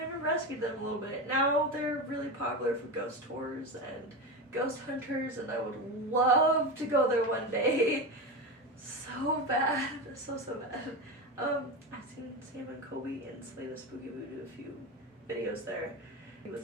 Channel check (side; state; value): both; normal; correlation 0.21